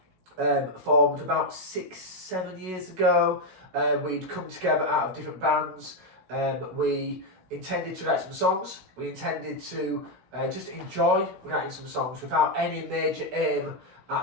formed about 6-7 years ago. We'd come together out of different bands. We intended to write some songs. We intended to just enjoy writing some songs without any major aim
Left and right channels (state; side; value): late; left; 16 ms